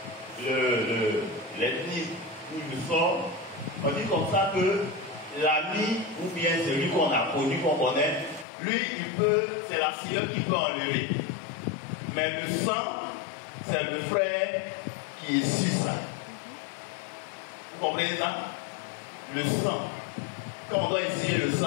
l'ethnie où je sors, on dit comme ça que l'ami ou bien celui qu'on a connu, qu'on connaît, lui, c'est la sœur qui peut enlever. Mais le sang, c'est le frère qui est sur ça. Vous comprenez ça? Le sang. Quand on doit essayer le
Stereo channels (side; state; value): right; drops out; at 8.5 s